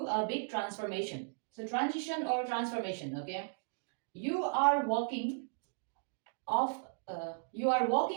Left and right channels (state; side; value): silent; left; digital silence